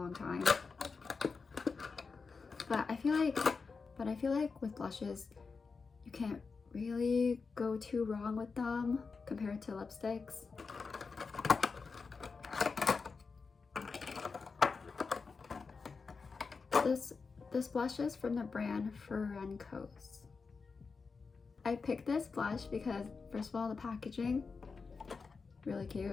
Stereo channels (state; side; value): quieter; right; 4.8 dB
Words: time. But I feel like with blushes, you can't really go too wrong with them compared to lipsticks. This blush is from the brand Ferencos. I picked this blush because first of all, the packaging, really